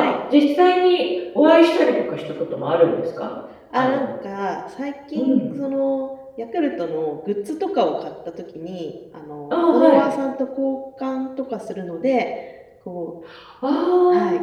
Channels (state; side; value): identical; both; correlation 1.00